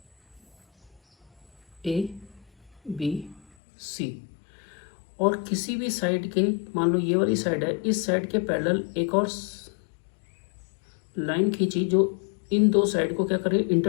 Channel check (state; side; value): drops out; right; at 3.5 s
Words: ए बी सी, और किसी भी साइड के, मान लो ये वाली साइड है, इस साइड के पैरेलल एक और लाइन खींची जो इन दो साइड को क्या कर रही है,